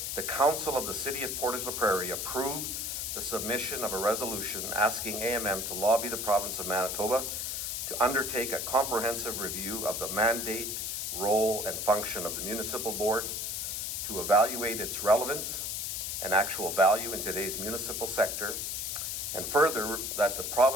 the Council of the City of Portage la Prairie approve the submission of a resolution asking AMM to lobby the province of Manitoba to undertake a comprehensive review of the mandate, role, and function of the municipal board, to evaluate its relevance and actual value in today's municipal sector, and further, that the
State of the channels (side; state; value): left; noise; hiss, 3 dB below the sound